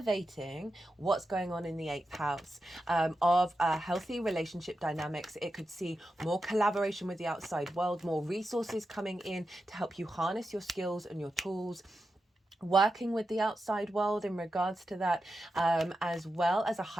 what's going on in the 8th house of healthy relationship dynamics. It could see more collaboration with the outside world, more resources coming in to help you harness your skills and your tools, working with the outside world in regards to that, as well as a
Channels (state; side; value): normal; both; correlation 0.90